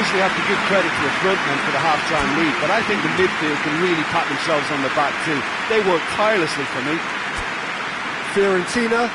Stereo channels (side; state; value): both; identical; correlation 1.00